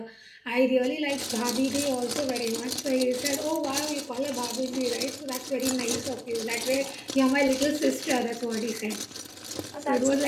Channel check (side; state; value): both; identical; correlation 1.00